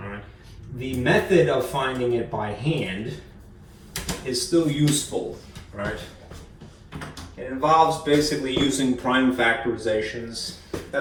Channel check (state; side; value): identical; both; correlation 1.00